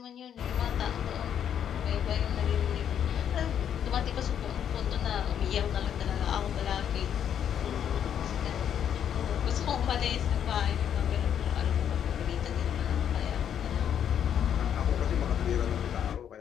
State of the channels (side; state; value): right; quieter; 9.1 dB